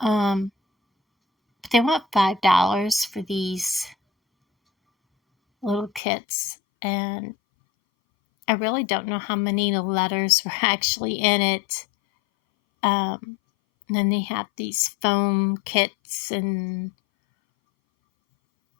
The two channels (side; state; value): right; drops out; at 6.0 s